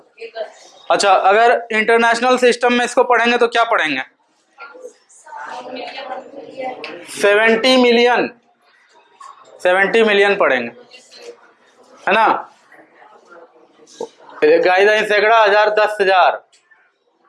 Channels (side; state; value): both; identical; correlation 1.00